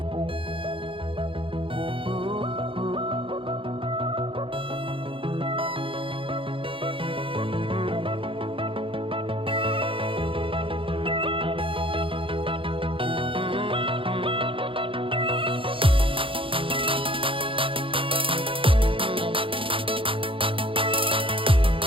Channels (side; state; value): left; late; 0.25 ms